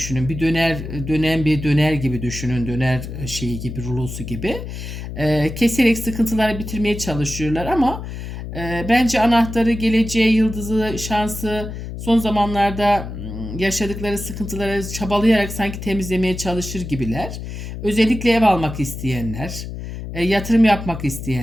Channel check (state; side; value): noise; left; hum, 8 dB below the sound